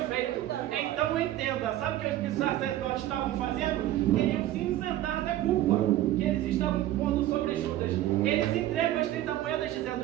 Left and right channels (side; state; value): left; quieter; 14.0 dB